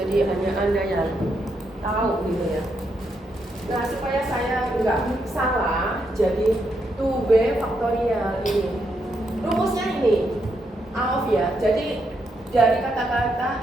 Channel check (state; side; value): normal; both; correlation 0.79